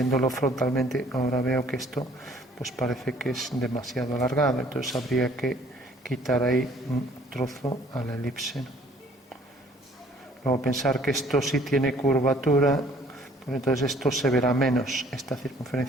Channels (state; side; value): normal; both; correlation 0.58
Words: frontalmente ahora veo que esto pues parece que es demasiado alargado, entonces habría que quitar ahí un trozo a la elipse, ¿no? Luego pensar que esto sí tiene curvatura, pues entonces esto se verá menos, esta